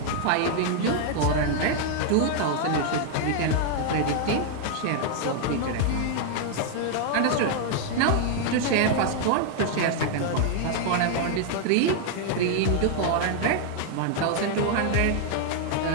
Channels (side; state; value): both; different; correlation 0.00